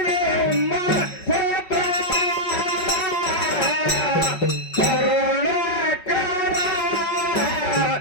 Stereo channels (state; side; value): late; right; 5.4 ms